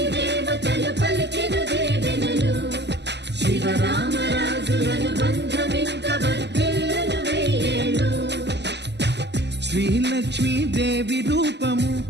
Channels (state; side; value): late; left; 0.50 ms